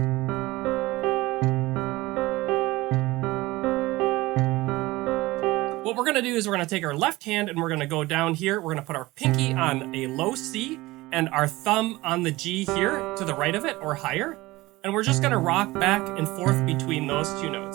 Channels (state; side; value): quieter; left; 19.8 dB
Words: What we're gonna do is we're gonna take our left hand and we're gonna go down here. We're gonna put our pinky on a low C and our thumb on the G here to the right of it or higher. And we're just gonna rock back and forth between those 2